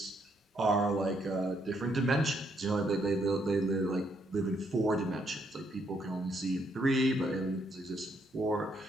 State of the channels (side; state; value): both; normal; correlation 0.73